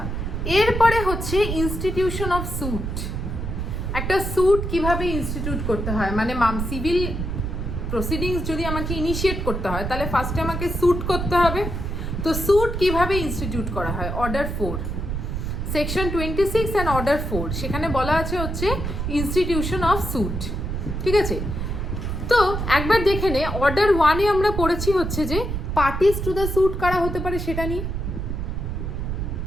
এরপরে হচ্ছে ইনস্টিটিউশন অফ স্যুট। একটা স্যুট কিভাবে ইনস্টিটিউট করতে হয়, মানে সিভিল প্রসিডিংস যদি আমাকে ইনিশিয়েট করতে হয় তাহলে ফার্স্টে আমাকে স্যুট করতে হবে। তো স্যুট কিভাবে ইনস্টিটিউট করা হয়? অর্ডার 4 সেকশন 26 অ্যান্ড অর্ডার 4 সেখানে বলা আছে হচ্ছে ইনস্টিটিউশন অফ স্যুট, ঠিক আছে। তো একবার দেখে নে, অর্ডার 1-এ আমরা পড়েছি হচ্ছে যে পার্টিস টু দ্য স্যুট কারা হতে পারে সেটা নিয়ে,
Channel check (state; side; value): noise; right; rumble, 3 dB below the sound